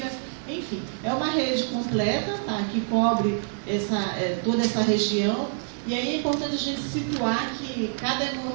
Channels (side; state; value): left; silent; 61 dB below the other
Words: enfim, é uma rede completa, tá? Que cobre toda essa região. E aí é importante a gente situar que cada